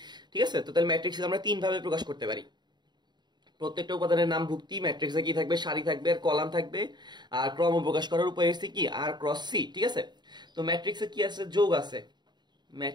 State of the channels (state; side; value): late; left; 0.21 ms